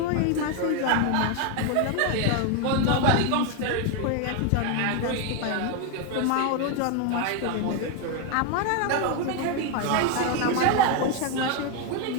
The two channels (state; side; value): different; both; correlation 0.01